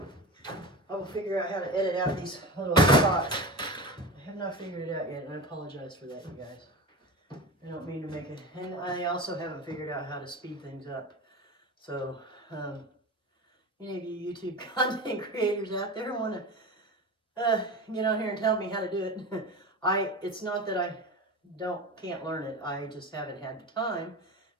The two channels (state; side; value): normal; both; correlation 0.28